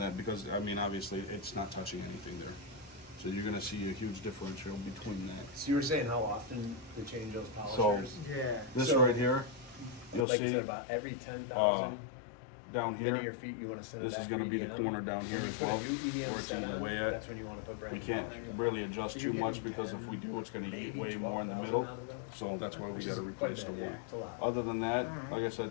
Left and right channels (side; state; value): right; drops out; at 10.2 s